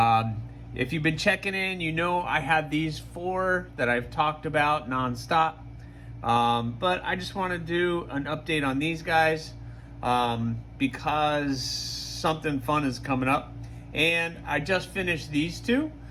you've been checking in, you know I had these 4 that I've talked about nonstop. But I just want to do an update on these guys because something fun is coming up. And I just finished these 2.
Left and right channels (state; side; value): identical; both; correlation 1.00